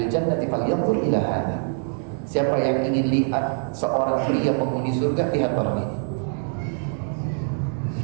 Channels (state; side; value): silent; left; 59 dB below the other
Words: al-jannati falyanzur ila hadha." Siapa yang ingin lihat seorang pria penghuni surga, lihat orang ini.